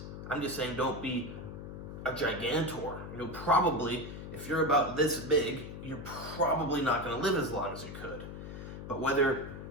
I'm just saying don't be a gigantor. Probably, if you're about this big, you're probably not going to live as long as you could. But whether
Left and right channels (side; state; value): left; noise; hum, 9 dB below the sound